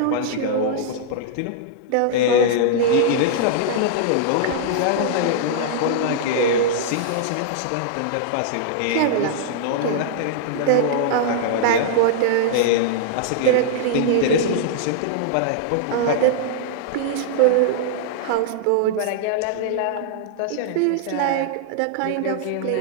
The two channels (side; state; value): both; different; correlation -0.02